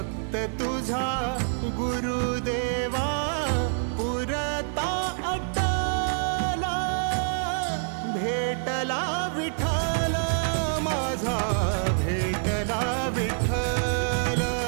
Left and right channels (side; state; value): left; silent; digital silence